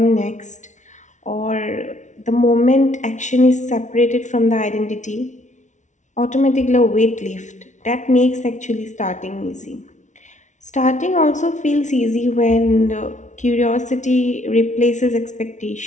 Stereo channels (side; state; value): right; late; 0.36 ms